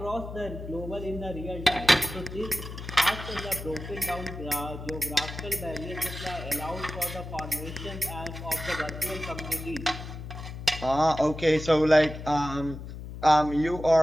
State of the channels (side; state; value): left; noise; hum, 10 dB below the sound